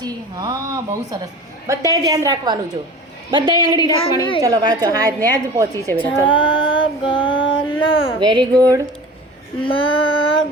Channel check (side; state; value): both; normal; correlation 0.38